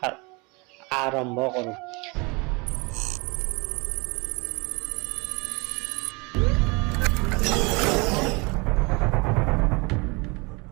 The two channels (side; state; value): left; quieter; 28.3 dB